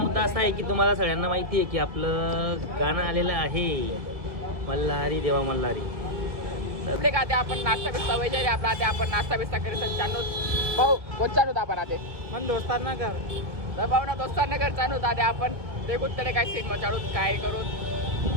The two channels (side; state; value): left; late; 1.6 ms